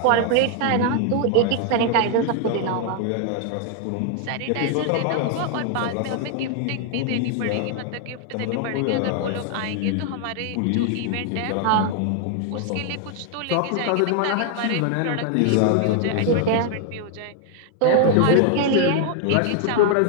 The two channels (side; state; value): both; different; correlation 0.00